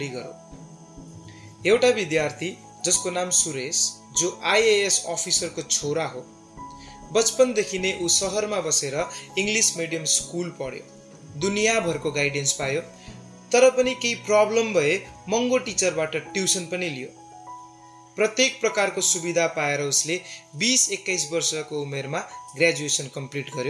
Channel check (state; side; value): identical; both; correlation 1.00